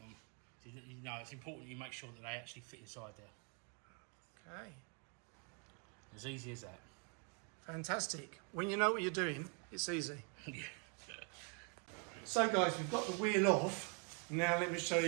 So you know, it's important you make sure that they actually fit inside there. Okay. As easy as that. Fantastic. When you know what you're doing, it's easy. Yeah. So guys, we've got the wheel off. Now let me show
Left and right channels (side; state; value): left; quieter; 37.6 dB